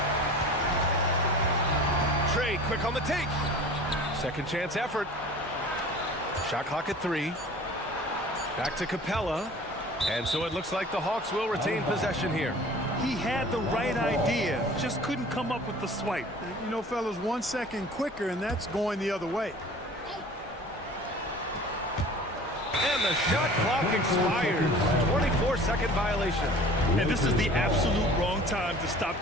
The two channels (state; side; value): normal; both; correlation 0.44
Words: Trey quick on the take. Second chance effort. Shot clock at 3. Back to Capella. And so it looks like the Hawks will retain possession here. He had the right idea, just couldn't come up with the swipe. You know, fellas, 1 second quicker, and that's going the other way. And the shot clock expires. 24-second violation. And this is the absolute wrong time to stop